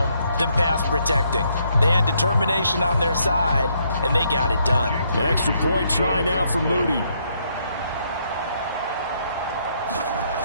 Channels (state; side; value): inverted; both; correlation -0.73